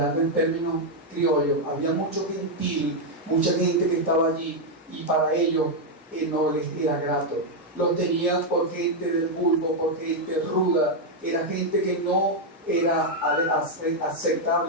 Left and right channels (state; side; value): normal; both; correlation 0.00